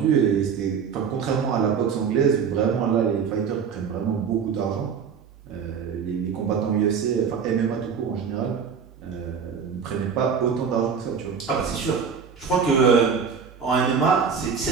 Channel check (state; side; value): quieter; left; 6.5 dB